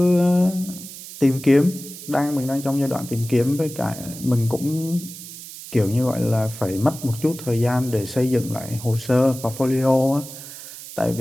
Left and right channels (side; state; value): right; noise; hiss, 13 dB below the sound